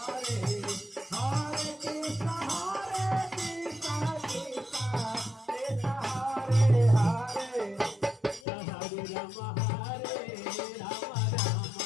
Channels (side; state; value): right; drops out; at 8.5 s